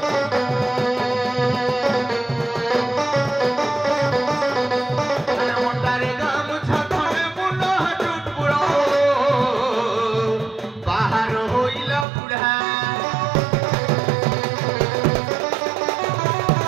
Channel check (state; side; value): drops out; left; at 12.1 s